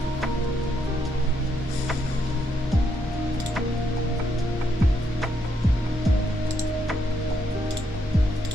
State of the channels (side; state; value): both; normal; correlation 0.76